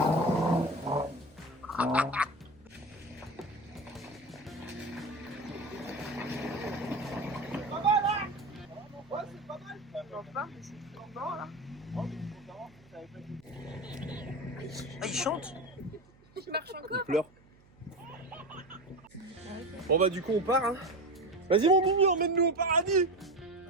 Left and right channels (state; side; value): noise; right; hum, 28 dB below the sound